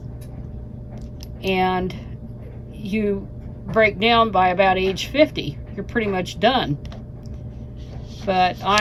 And you break down by about age 50, you're pretty much done. But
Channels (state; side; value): identical; both; correlation 1.00